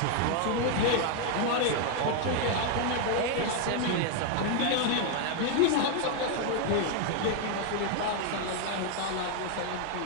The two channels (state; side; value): different; both; correlation 0.00